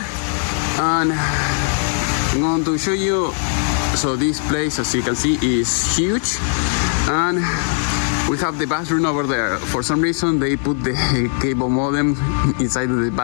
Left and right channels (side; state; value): right; silent; digital silence